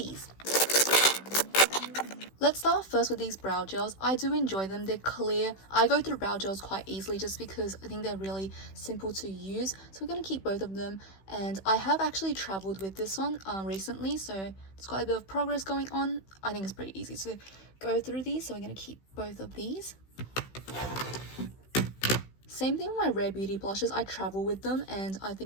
Let's start first with these brow gels. I do enjoy them. They're clear. I go through brow gels quite easily just because I think they're really simple to use. So we're going to keep both of them. And I have actually traveled with this one recently, so there's quite a bit of progress going on. I think it's pretty easy to go through these, so we're going to keep both of these. Same thing with my Rare Beauty blushes. I travel with them and I've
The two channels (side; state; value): right; late; 16 ms